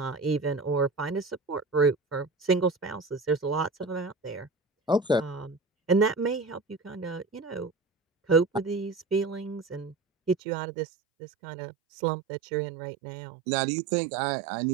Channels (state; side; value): drops out; left; at 10.4 s